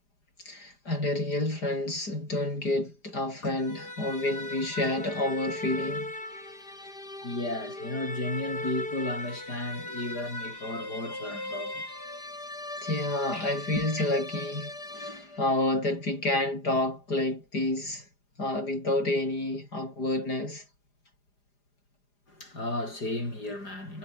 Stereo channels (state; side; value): late; right; 4.9 ms